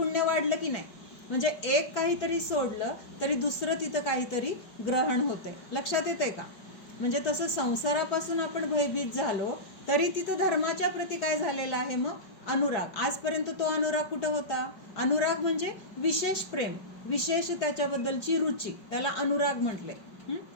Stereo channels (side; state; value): right; late; 5.1 ms